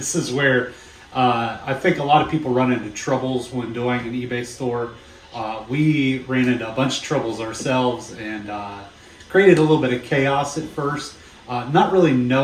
is where I think a lot of people run into troubles when doing an eBay store. We ran into a bunch of troubles ourselves and created a little bit of chaos at first, not really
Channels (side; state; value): both; identical; correlation 1.00